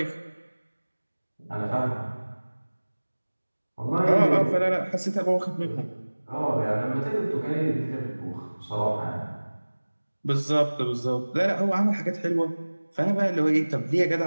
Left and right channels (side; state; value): both; inverted; correlation -1.00